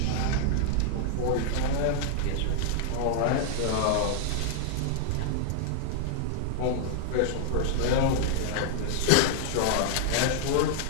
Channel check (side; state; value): both; different; correlation -0.01